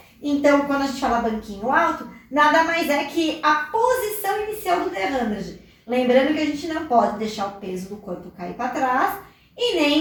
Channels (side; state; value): both; identical; correlation 1.00